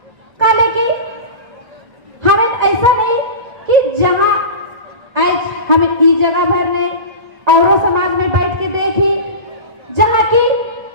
काले की हमें ऐसा नहीं कि जहाँ आज हमें ई जगह भर ने और समाज में बैठ के देखी, जहाँ की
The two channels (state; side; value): late; left; 2.0 ms